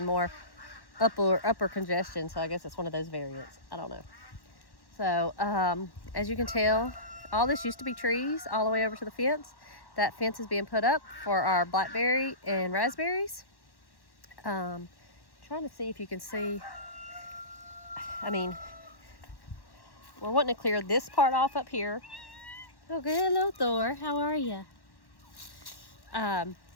more upper congestion. So I guess it's one of those variants. I don't know. So as you can tell, all this used to be trees all the way over to the fence. That fence is being put up for our blackberry and raspberries. Trying to see if you can see. I mean, we're wanting to clear this part off up here. Oh, good. Hello, Thor. How are you?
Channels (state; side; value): late; right; 1.1 ms